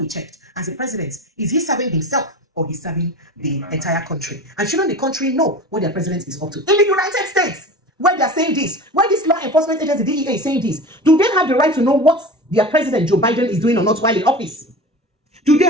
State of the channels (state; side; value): normal; both; correlation 0.33